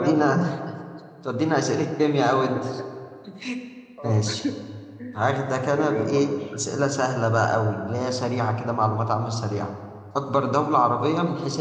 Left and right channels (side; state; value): both; identical; correlation 1.00